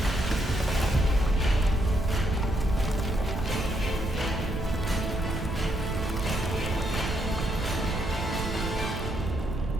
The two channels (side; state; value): right; noise; rumble, 4 dB below the sound